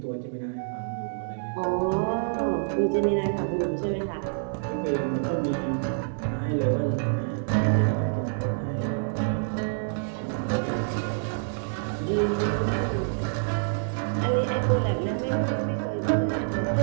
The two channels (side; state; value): left; silent; digital silence